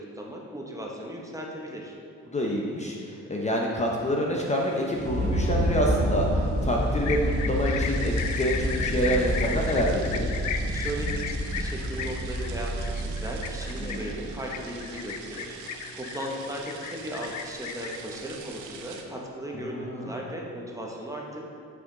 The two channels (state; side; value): normal; both; correlation 0.45